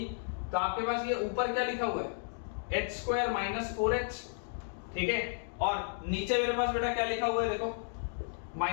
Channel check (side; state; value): right; silent; digital silence